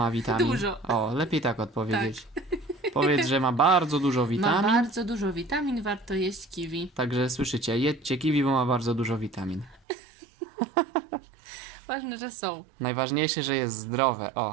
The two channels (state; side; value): drops out; left; at 9.8 s